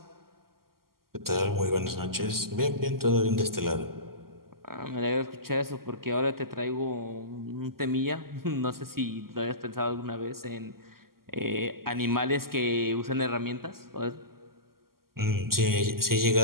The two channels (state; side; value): late; left; 0.92 ms